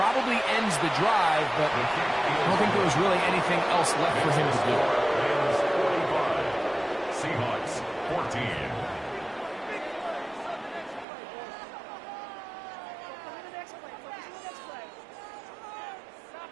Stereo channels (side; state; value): left; drops out; at 11.1 s